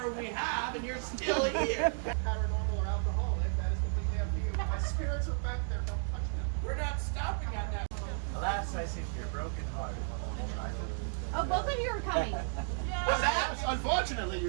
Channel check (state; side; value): silent; left; 55 dB below the other